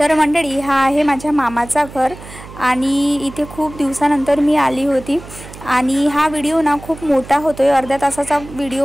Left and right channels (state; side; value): noise; right; hum, 16 dB below the sound